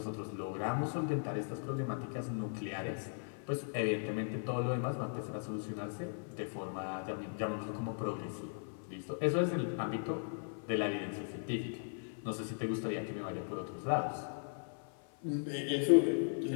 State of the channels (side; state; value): right; silent; 53 dB below the other